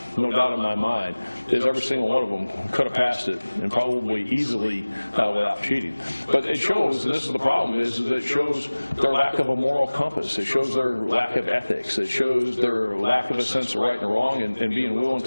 no doubt in my mind, is every single one of them could have passed it, and probably easily without cheating. But it shows, and this is the problem, is that it shows their lack of a moral compass. It shows their lack of ethics. It shows their lack of a sense of right and wrong, and being willing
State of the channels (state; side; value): inverted; both; correlation -1.00